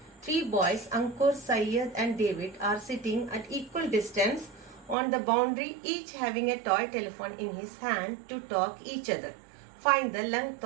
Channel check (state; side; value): drops out; left; at 5.0 s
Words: Three boys, Ankur, Syed and David, are sitting at equal distance on the boundary, each having a toy telephone in his hand to talk each other. Find the length